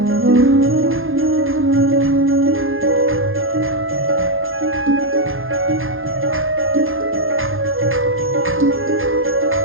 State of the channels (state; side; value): late; left; 0.60 ms